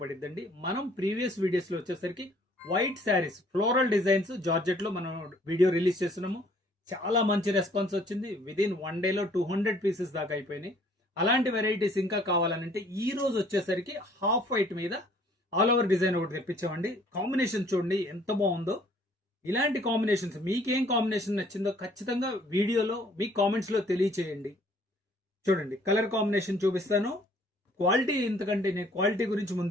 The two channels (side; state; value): both; normal; correlation 0.59